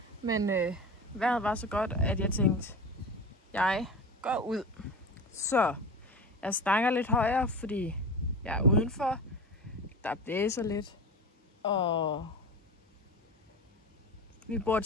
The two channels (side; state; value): both; normal; correlation 0.29